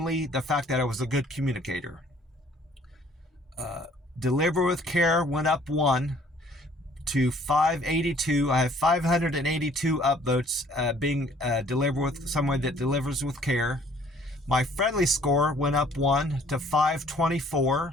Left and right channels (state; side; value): normal; both; correlation 0.58